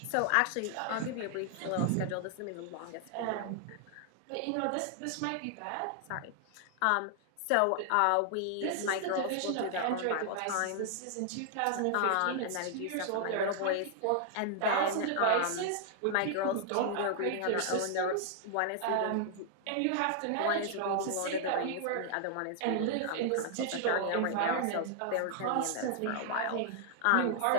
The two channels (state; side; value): different; both; correlation 0.00